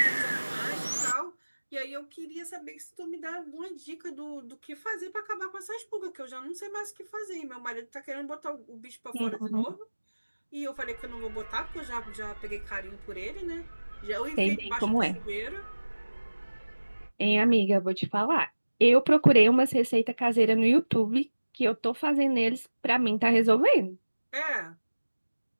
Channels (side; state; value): both; inverted; correlation -1.00